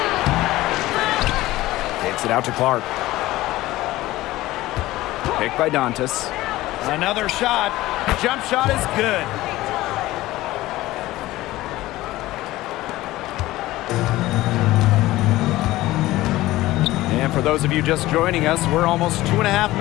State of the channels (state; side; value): quieter; right; 17.2 dB